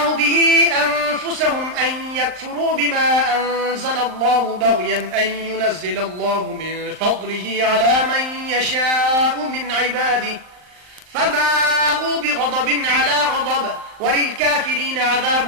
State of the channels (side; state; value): left; late; 39 ms